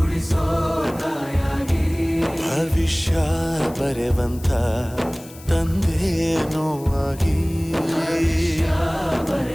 ತಾಯಾಗಿ ಭವಿಷ್ಯ ಬರೆವಂತ ತಂದೇನೋ ಆಗಿ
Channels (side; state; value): left; noise; hiss, 20 dB below the sound